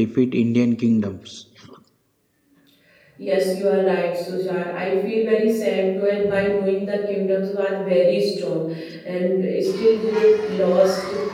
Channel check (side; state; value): both; identical; correlation 1.00